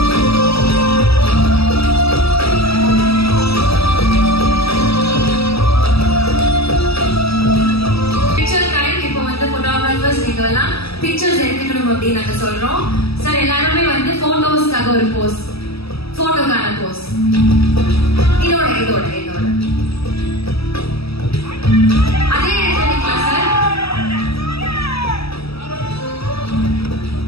நீங்கெல்லாம் பிக்சர்ஸ் எடுத்துக்கணும் அப்படின்னு நாங்க சொல்றோம். சார் எல்லாருமே வந்து போட்டோஸ்க்காக ஒரு போஸ், போட்டோக்கான போஸ் இதோட இதோட இதோட அதே எடுத்துக்கலாம் sir.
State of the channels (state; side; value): late; right; 0.77 ms